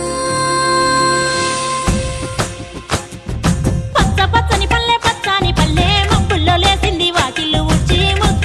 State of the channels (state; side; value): identical; both; correlation 1.00